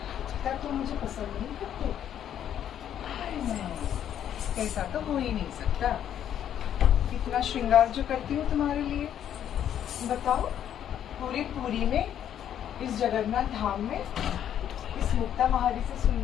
क्या तुम मुझे पसंद नहीं करते? नहीं, ऐसा तो हो ही नहीं सकता। इतना श्रृंगार जो करती हूँ तुम्हारे लिए, बताओ पूरी पूरी में, इस जगन्नाथ धाम में, इस मुक्ता महारी से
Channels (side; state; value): right; quieter; 10.1 dB